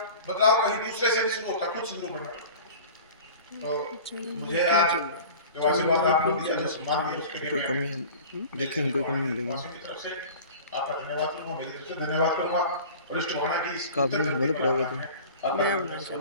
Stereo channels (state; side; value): inverted; both; correlation -0.39